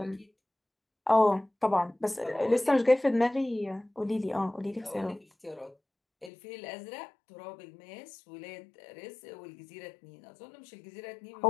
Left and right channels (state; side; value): drops out; right; at 6.3 s